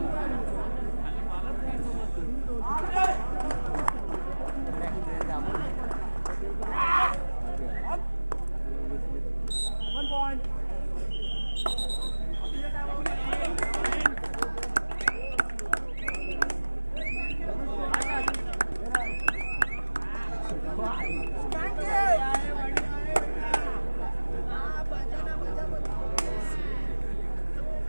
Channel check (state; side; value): inverted; both; correlation -1.00